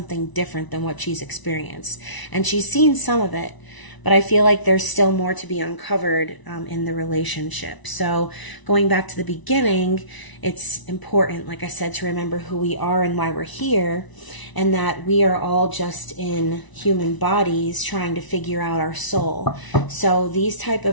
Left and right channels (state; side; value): late; right; 1.0 ms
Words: different than what she's experienced. And she's seen some of it, but I feel like there's still more to be uncovered in the relationship. So going back to the beginning, it's important, like I said, to remember who we are and why we're here, and that we are all just in human bodies trying to figure out our soul. So these type